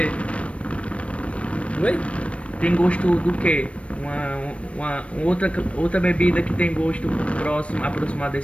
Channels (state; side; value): late; right; 0.062 ms